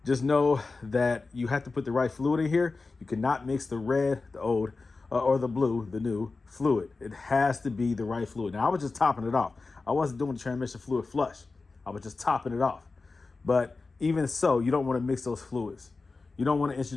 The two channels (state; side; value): quieter; right; 3.9 dB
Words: just know that you have to put the right fluid in here. You cannot mix the red, the old, or the blue, the new fluid. It has to be the right fluid. Now, I was just topping it off. I wasn't doing the transmission fluid flush. I was just topping it off. But even so, you don't want to mix those fluids. You don't want to